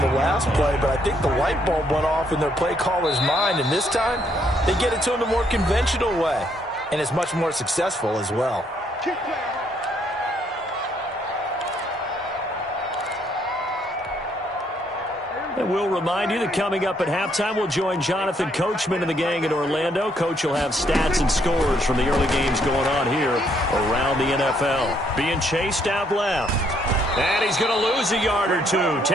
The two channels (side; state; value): both; normal; correlation 0.70